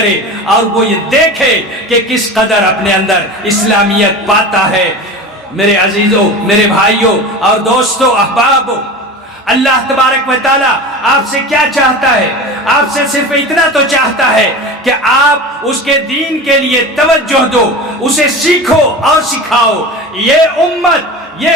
اور وہ یہ دیکھے کہ کس قدر اپنے اندر اسلامیت پاتا ہے۔ میرے عزیزوں، میرے بھائیوں اور دوستوں، احبابوں، اللہ تبارک و تعالیٰ آپ سے کیا چاہتا ہے؟ آپ سے صرف اتنا تو چاہتا ہے کہ آپ اس کے دین کے لیے توجہ دو، اسے سیکھو اور سکھاؤ۔ یہ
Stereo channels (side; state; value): both; normal; correlation 0.31